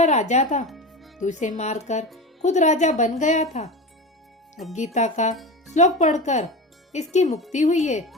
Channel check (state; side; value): normal; both; correlation 0.26